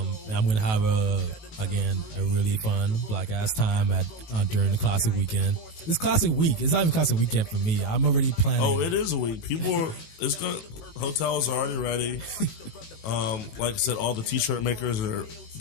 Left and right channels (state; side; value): late; right; 18 ms